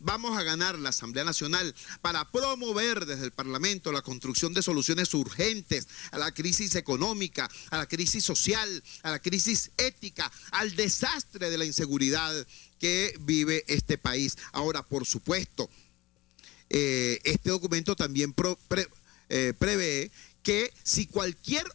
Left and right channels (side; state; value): right; quieter; 19.8 dB